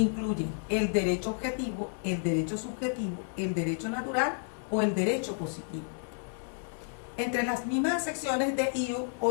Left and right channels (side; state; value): right; silent; 57 dB below the other